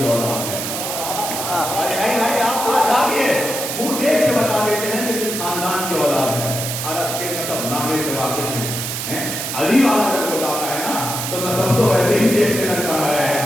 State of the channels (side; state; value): right; noise; hiss, 4 dB below the sound